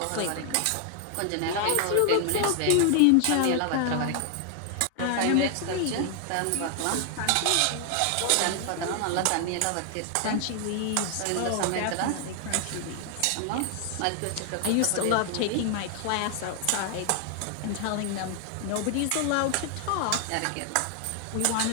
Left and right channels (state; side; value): different; both; correlation 0.00